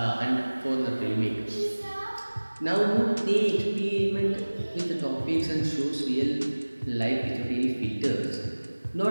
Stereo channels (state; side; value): inverted; both; correlation -1.00